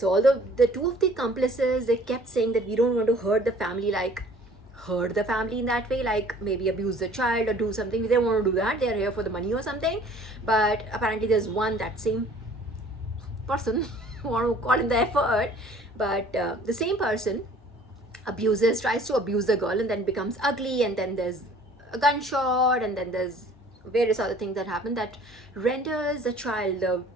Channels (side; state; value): both; normal; correlation 0.52